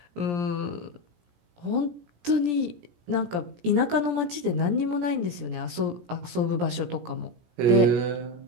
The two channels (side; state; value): left; late; 17 ms